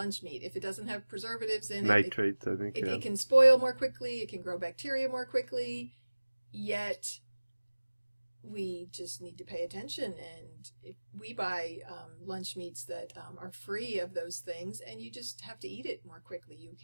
meat, if it doesn't have preservatives in nitrates, I think. It can spoil more quickly, it can grow bacteria more quickly, yet we just need to pay attention. And if we buy lunch meats that are free of those things, and you just have to eat it more quickly.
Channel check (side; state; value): both; inverted; correlation -1.00